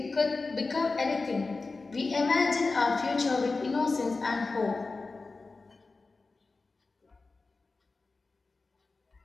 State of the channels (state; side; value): quieter; right; 3.8 dB